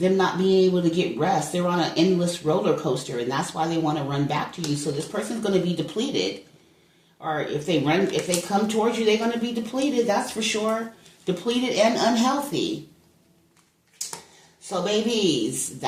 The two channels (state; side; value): identical; both; correlation 1.00